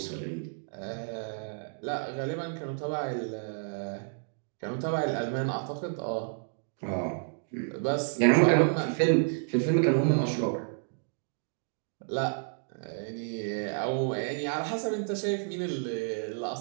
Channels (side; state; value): left; silent; digital silence